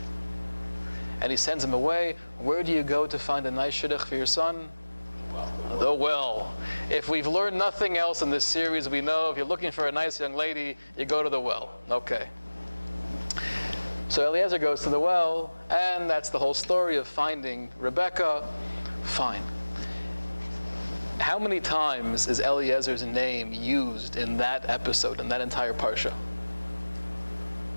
And he sends him away. Where do you go to find a nice shidduch for your son? The well. If we've learned nothing else in this series, we know if you're looking for a nice young lady, you go to the well. Okay. So Eliezer goes to the well, and that's the whole story of finding Rebecca. Fine. How many times is Eliezer's name used in that episode, in that entire parsha?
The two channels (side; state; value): both; inverted; correlation -1.00